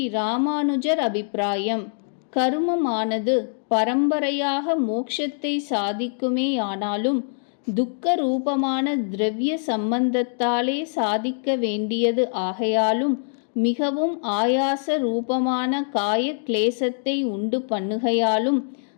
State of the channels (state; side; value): silent; right; digital silence